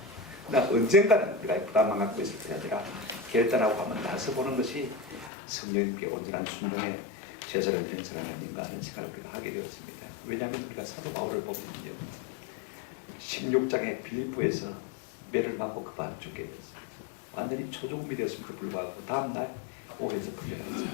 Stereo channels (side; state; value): right; drops out; at 5.3 s